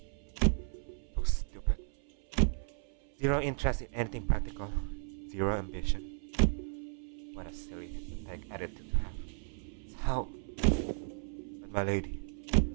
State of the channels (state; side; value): silent; left; 55 dB below the other